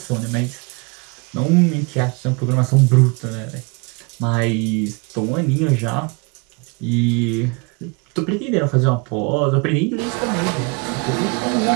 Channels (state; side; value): quieter; left; 29.9 dB